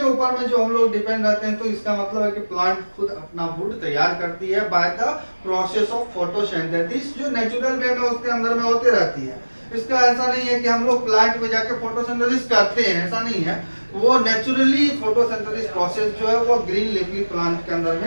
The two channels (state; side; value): inverted; both; correlation -1.00